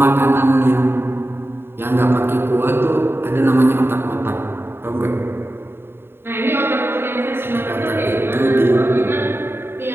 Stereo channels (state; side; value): late; left; 0.11 ms